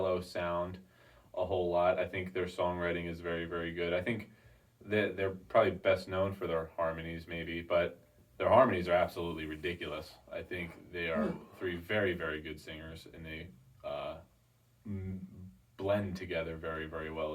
sound a whole lot. I think their songwriting is very, very good. I think they're probably best known for their harmonies, maybe, but their harmonies are absolutely ridiculous. I think they are three very, very good singers, and they blend together very, very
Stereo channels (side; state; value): both; identical; correlation 1.00